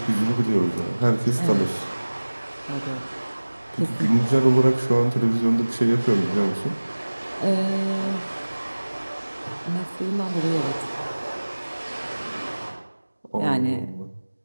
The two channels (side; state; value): both; inverted; correlation -1.00